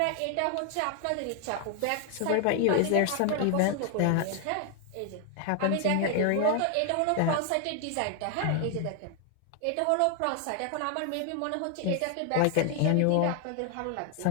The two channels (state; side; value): different; both; correlation 0.00